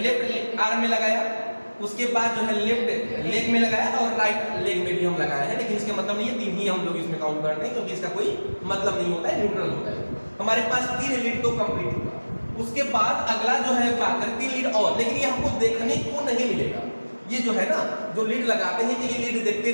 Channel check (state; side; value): inverted; both; correlation -1.00